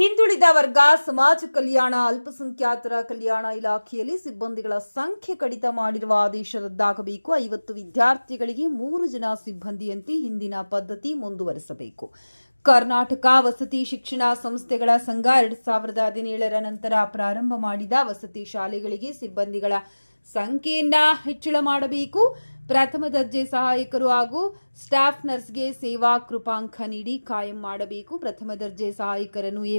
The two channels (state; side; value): inverted; both; correlation -1.00